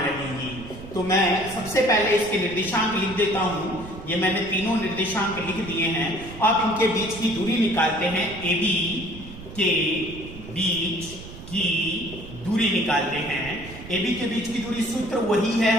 रहेंगी। तो मैं सबसे पहले इसके निर्देशांक लिख देता हूं। ये मैंने तीनों निर्देशांक लिख दिए हैं। अब इनके बीच की दूरी निकालते हैं। AB के बीच की दूरी निकालते हैं। AB के बीच की दूरी सूत्र वही है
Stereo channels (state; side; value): noise; right; rumble, 14 dB below the sound